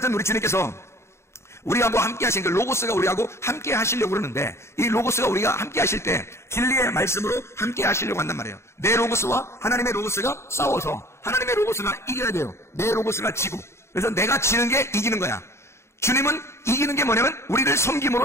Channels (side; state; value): right; late; 0.13 ms